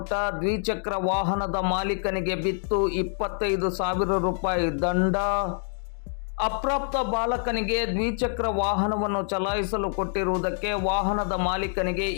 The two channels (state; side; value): silent; right; 60 dB below the other